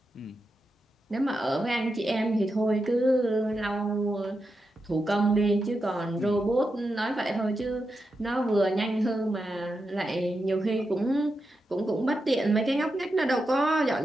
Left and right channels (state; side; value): normal; both; correlation 0.88